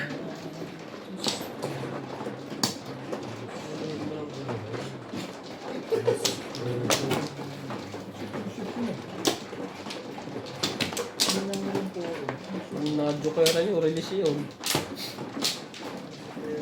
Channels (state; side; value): identical; both; correlation 1.00